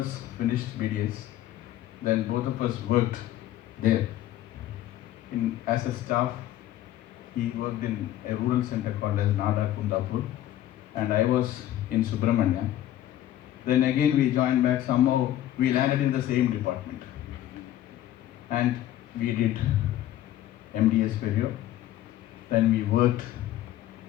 finished BDS. Then both of us worked there. As a staff, he worked in a rural center called as Nada Kundapur, and I was in Subramania. Then again we joined back, somehow we landed in the same department. And we did MDS Perio. Then we worked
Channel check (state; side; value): quieter; right; 13.0 dB